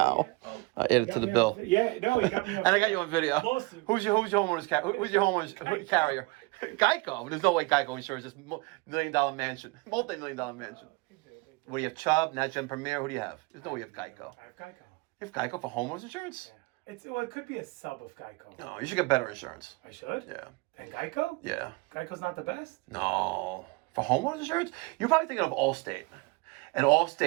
I added to the Got me on- bill. Yeah, no, you got me on And I got you on video. Lawsuit. Who's your homeowner's who's your homeowner's carrier? Geico. There's no way Geico insures this $1 million mansion, multi-million-dollar mansion. What do you have? Chubb, NatGen Premier. Who do you have? There's no way you have Geico. I have Geico. You have Geico for homeowners insurance? Yeah. It could be a sub of Geico. No, you should get better insurance. I should? Yeah. And Geico? Yeah. Geico's not the best? No. For homeowners insurance? You're probably thinking of Allstate. And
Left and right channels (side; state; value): left; quieter; 25.9 dB